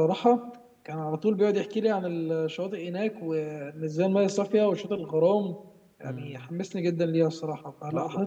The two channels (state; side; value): identical; both; correlation 1.00